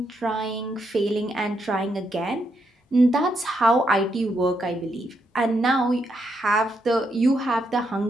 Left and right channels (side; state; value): both; normal; correlation 0.79